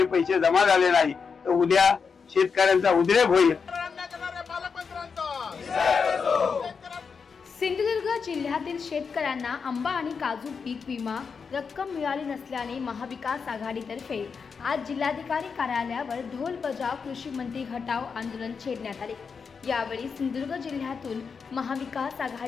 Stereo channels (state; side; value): quieter; right; 5.7 dB